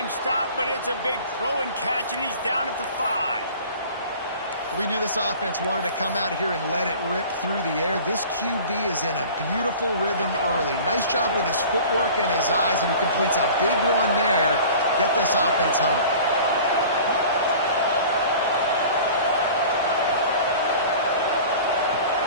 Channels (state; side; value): inverted; both; correlation -0.43